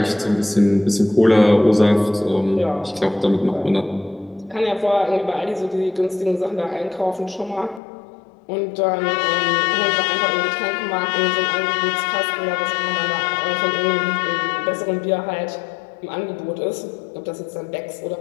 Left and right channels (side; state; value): right; drops out; at 7.8 s